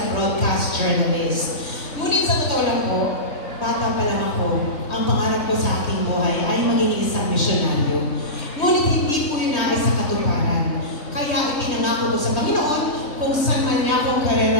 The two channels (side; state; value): right; late; 3.2 ms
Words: broadcast journalist. Ngunit sa totoo lang po, bata pa lang ako, ang pangarap ko sa aking buhay ay maging isang misyonaryo. Ngunit hindi ko yun nais sa katuparan. Kaya ipinangako ko sa Panginoon kung saan man niya akong